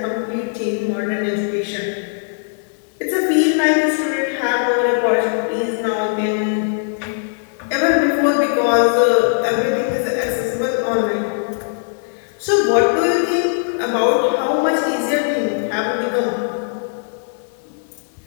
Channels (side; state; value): right; silent; digital silence